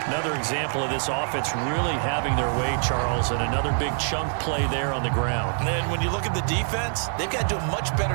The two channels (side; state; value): left; silent; 62 dB below the other